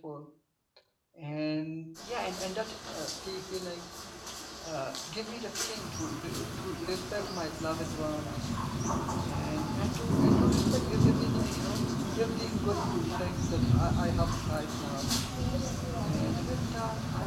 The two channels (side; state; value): both; identical; correlation 1.00